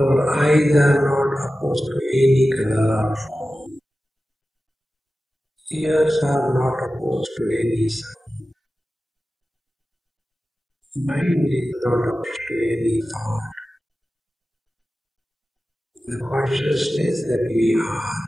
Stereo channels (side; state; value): both; normal; correlation 0.94